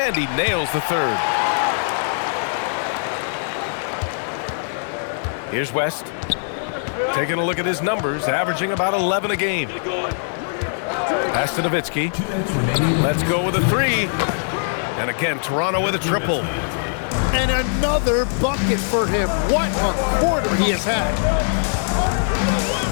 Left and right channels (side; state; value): right; silent; 62 dB below the other